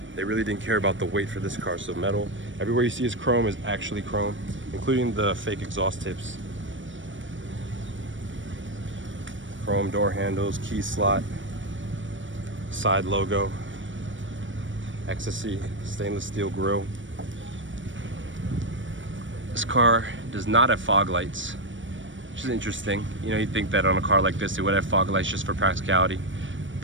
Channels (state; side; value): late; left; 0.56 ms